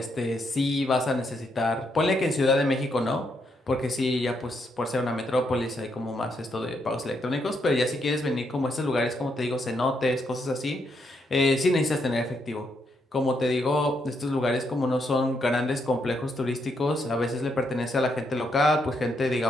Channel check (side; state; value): both; normal; correlation 0.78